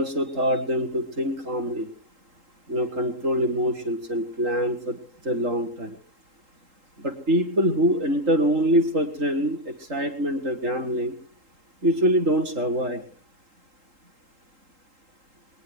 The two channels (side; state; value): left; late; 3.8 ms